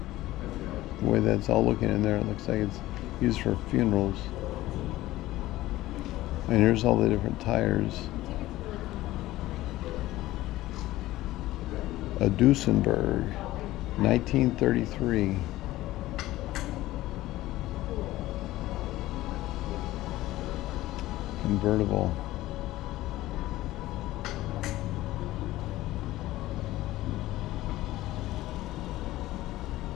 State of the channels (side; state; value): right; quieter; 16.5 dB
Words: The way that's all looking in there, it looks like it's used for funerals. And here's all the different tires. A Duesenberg, 1933. Convertible.